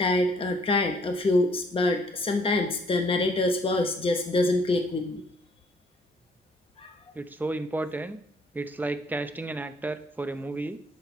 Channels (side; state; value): both; normal; correlation 0.64